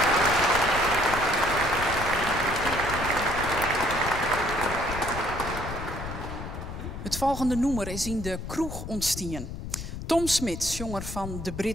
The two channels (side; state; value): left; noise; rumble, 8 dB below the sound